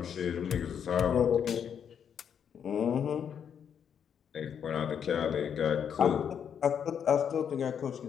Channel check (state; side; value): quieter; right; 8.0 dB